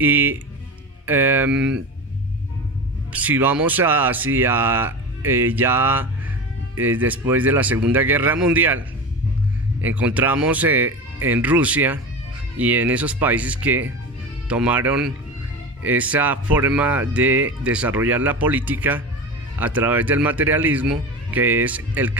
si vamos hacia después de la Segunda Guerra Mundial, encontramos en Rusia y en esos países que tomaron esa forma de desarrollar la política a través del materialismo, que es el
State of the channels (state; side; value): normal; both; correlation 0.27